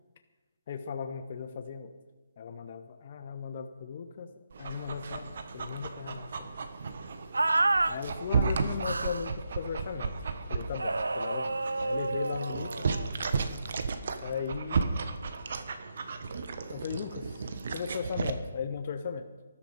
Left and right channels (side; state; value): both; inverted; correlation -0.82